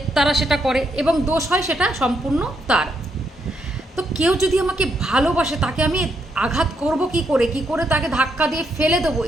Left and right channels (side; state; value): both; normal; correlation 0.77